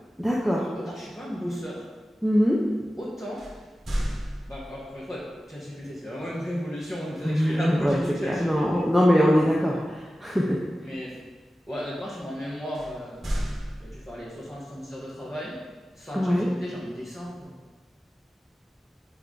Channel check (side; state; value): both; normal; correlation 0.95